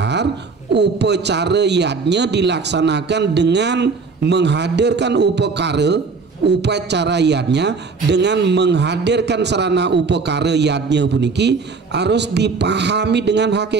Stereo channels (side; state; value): left; quieter; 4.6 dB